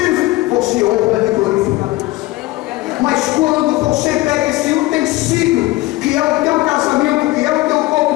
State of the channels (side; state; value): right; quieter; 19.5 dB